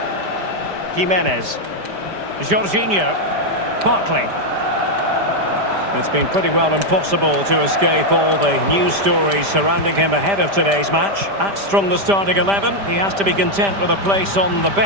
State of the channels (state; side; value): late; left; 5.0 ms